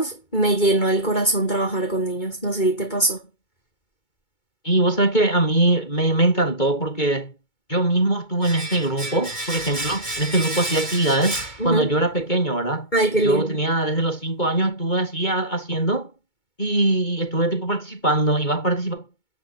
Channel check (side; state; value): right; late; 2.2 ms